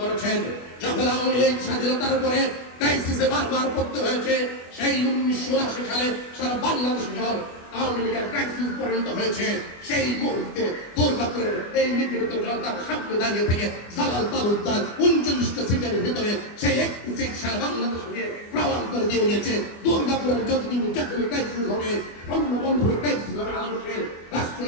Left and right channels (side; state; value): right; late; 24 ms